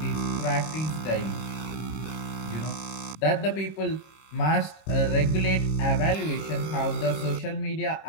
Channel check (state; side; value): late; right; 26 ms